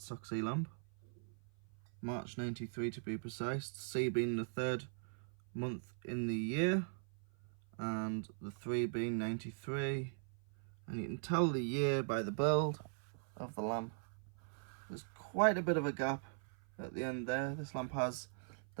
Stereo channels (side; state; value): left; silent; 51 dB below the other